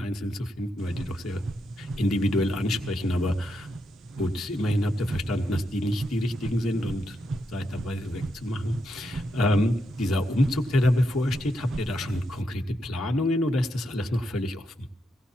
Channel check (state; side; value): normal; both; correlation 0.82